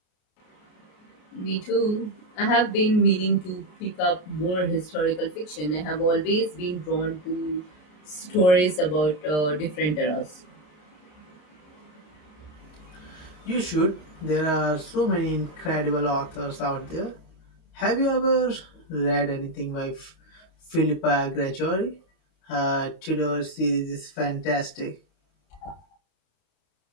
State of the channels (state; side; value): late; right; 33 ms